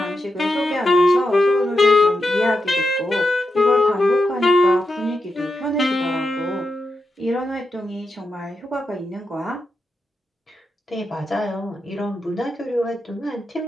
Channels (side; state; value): both; normal; correlation 0.87